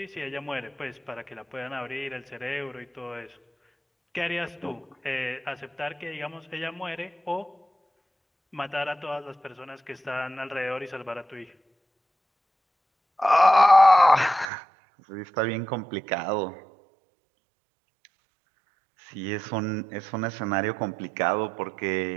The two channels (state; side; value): drops out; left; at 14.5 s